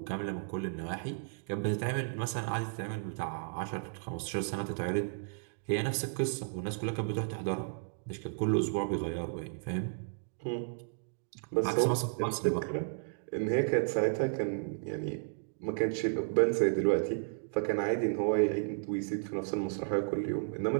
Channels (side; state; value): left; silent; digital silence